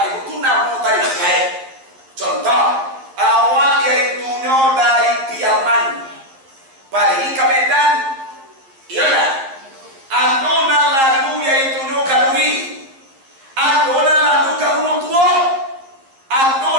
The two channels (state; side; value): late; left; 11 ms